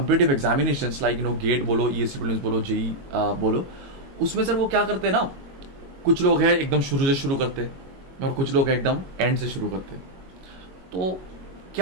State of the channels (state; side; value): late; left; 22 ms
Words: एग्जामिनेशंस लाइक गेट बोलो, ईएससी प्रीलिम्स बोलो, जेई बोलो, उसमें सर वो क्या करते हैं ना, कुछ लोग हैं एकदम शुरू से शुरू करते हैं और कुछ लोग एकदम एंड से शुरू करते हैं। तो